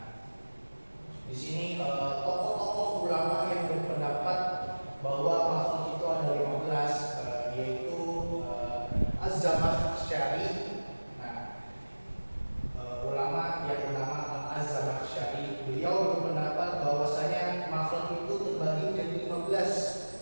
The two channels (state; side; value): inverted; both; correlation -1.00